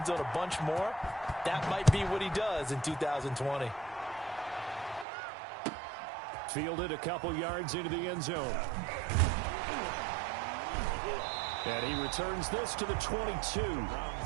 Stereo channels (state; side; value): drops out; left; at 5.1 s